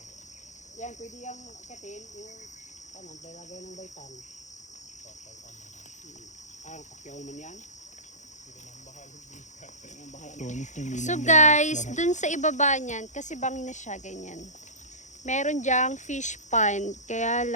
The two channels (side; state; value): right; late; 0.35 ms